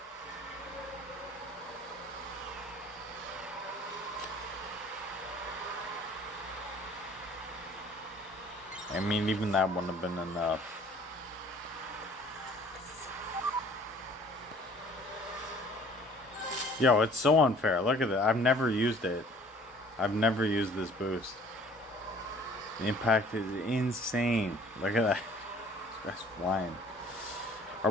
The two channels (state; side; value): normal; both; correlation 0.52